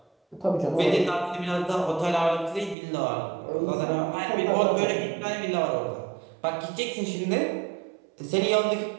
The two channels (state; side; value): drops out; left; at 2.8 s